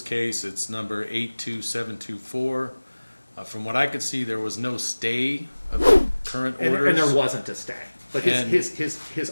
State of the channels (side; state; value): both; inverted; correlation -1.00